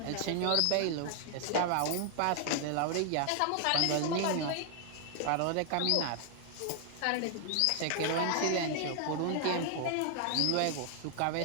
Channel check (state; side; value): different; both; correlation 0.00